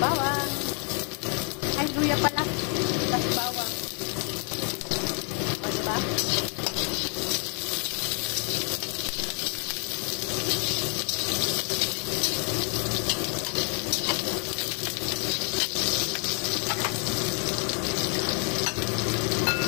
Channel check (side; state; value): right; quieter; 38.7 dB